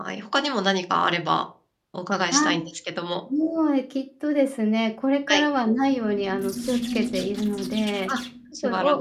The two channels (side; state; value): both; identical; correlation 1.00